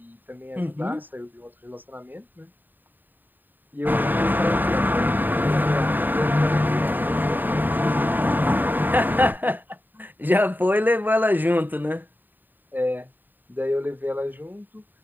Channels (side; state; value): left; late; 0.090 ms